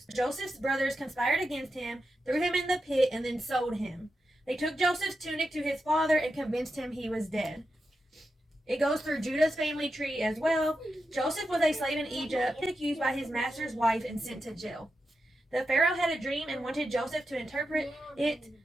Joseph's brothers conspired against him, threw him in the pit, and then sold him. They took Joseph's tunic to his father and convinced him he was dead. It goes through Judah's family tree as well. Joseph was a slave in Egypt, accused by his master's wife and sent to jail. The Pharaoh had a dream and wanted Joseph to interpret it.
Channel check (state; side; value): normal; both; correlation 0.88